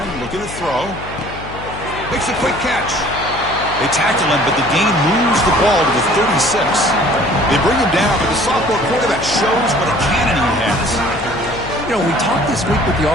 looking to throw. Makes a quick catch. They tackle him, but the gain moves the ball to the 36. They bring him down, but the sophomore quarterback shows what a cannon he has. You know, we talked this week with the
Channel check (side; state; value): left; noise; hum, 13 dB below the sound